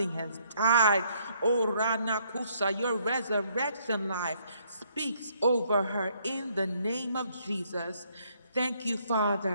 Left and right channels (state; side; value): inverted; both; correlation -0.68